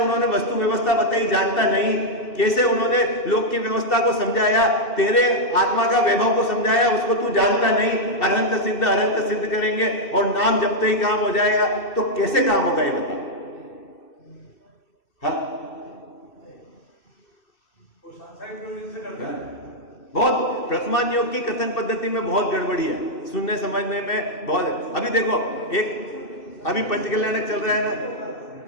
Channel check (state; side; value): late; right; 2.6 ms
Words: वस्तु व्यवस्था बताई जानता नहीं, कैसे उन्होंने लोक की व्यवस्था को समझाया, तेरे आत्मा का वैभव को समझाया, उसको तू जानता नहीं। अरंत सिद्ध करेंगे और नाम जपते ही काम हो जाएगा, तो कैसे काम होगा ये बताओ? हाँ? बहुत प्रथमान योग की कथन पद्धति में बहुत गड़बड़ी है, सुनने समझने में बहुत। अभी देखो, एक अभी पंचकल्याणक चल रहा है ना,